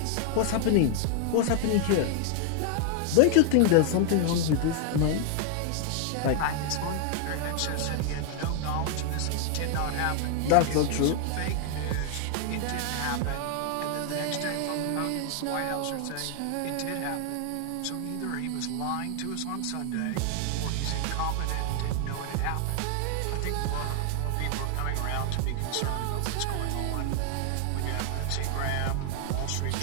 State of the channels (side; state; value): both; different; correlation 0.00